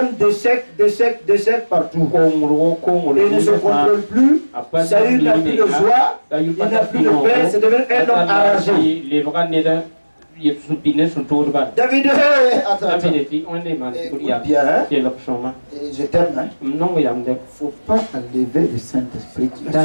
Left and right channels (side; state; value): both; inverted; correlation -1.00